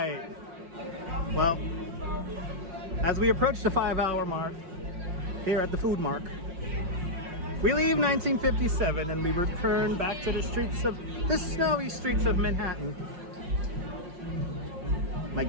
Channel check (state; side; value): late; left; 5.6 ms